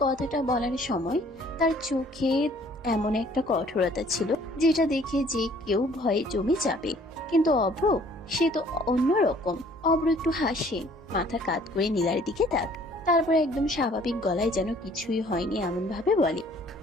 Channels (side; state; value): both; normal; correlation 0.57